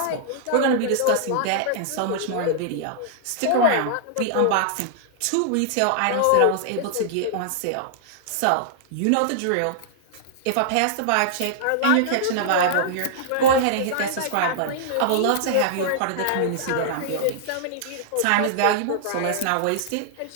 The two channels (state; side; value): different; both; correlation -0.01